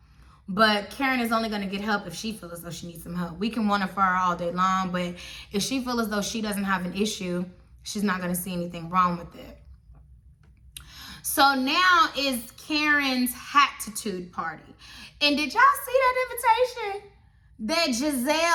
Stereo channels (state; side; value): identical; both; correlation 1.00